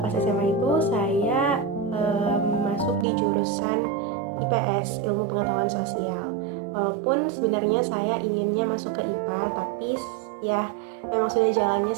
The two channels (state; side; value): drops out; left; at 3.1 s